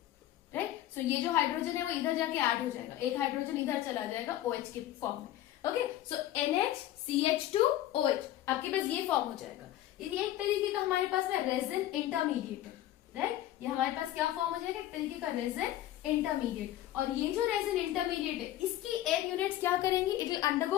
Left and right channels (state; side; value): quieter; right; 13.5 dB